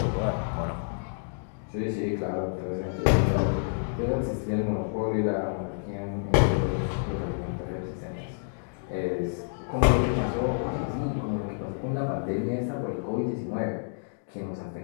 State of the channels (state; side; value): silent; right; digital silence